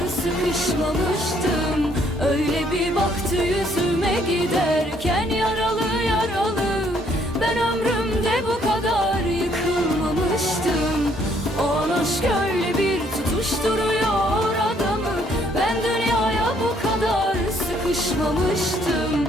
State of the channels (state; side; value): normal; both; correlation 0.66